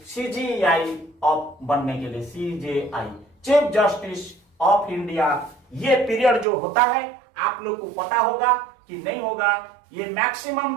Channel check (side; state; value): left; drops out; at 6.5 s